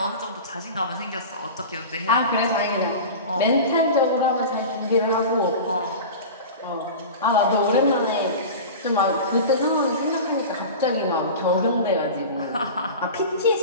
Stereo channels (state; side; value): inverted; both; correlation -0.32